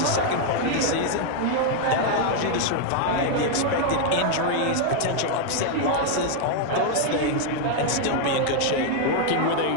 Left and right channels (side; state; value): both; different; correlation 0.00